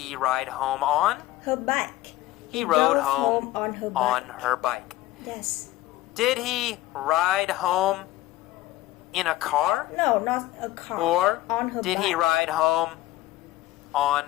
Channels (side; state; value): right; quieter; 16.2 dB